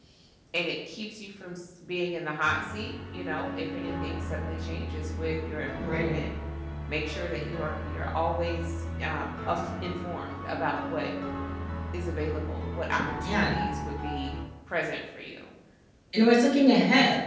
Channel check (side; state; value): both; identical; correlation 1.00